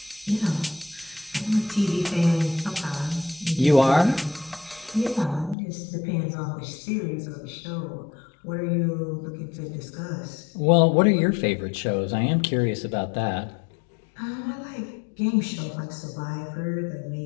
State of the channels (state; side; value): drops out; right; at 5.6 s